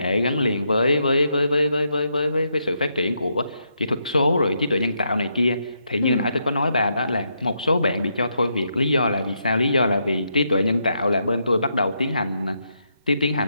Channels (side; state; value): both; inverted; correlation -0.80